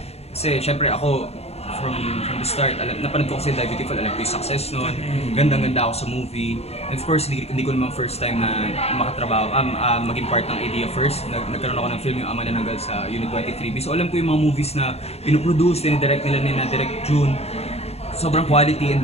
Kasi syempre ako from the start, napanood ko kasi Die Beautiful, alam ko yung success nun. Gandang-ganda ako sa movie. And of course, hindi ko naman first time na makatrabaho, maging part ng idea first. Nagkaroon ako ng film yung Ama na Nanggal sa Unit 23B. So alam ko yung mga movies na pinoproduce, dinidirect nila ni na Direk June. Sobrang quality and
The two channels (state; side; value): late; right; 0.30 ms